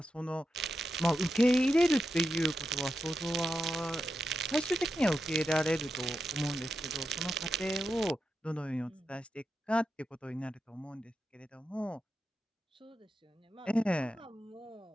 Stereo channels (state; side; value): normal; both; correlation 0.88